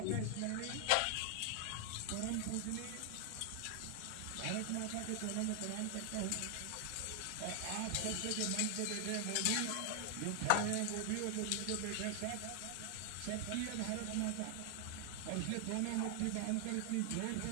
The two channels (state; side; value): different; both; correlation 0.00